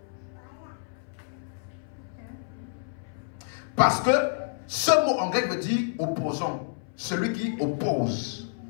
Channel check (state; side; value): silent; right; 59 dB below the other